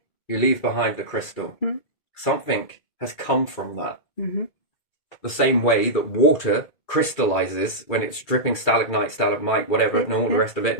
leave behind the crystal. Something has come from that. The same way that water crystallizes when it's dripping stalagmite, whatever, and all the rest of it,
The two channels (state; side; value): late; right; 2.2 ms